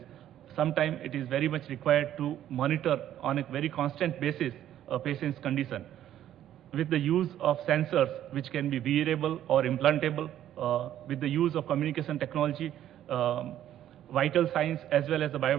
sometimes it is very much required to monitor on a very constant basis a patient's condition. With the use of sensors, which can be wearable or implantable, with the use of communication technology, vital signs as well as the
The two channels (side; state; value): left; quieter; 11.7 dB